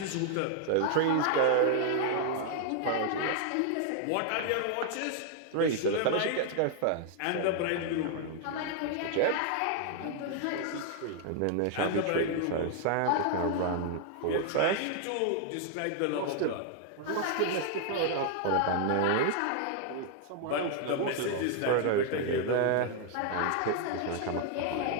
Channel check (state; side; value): different; both; correlation 0.00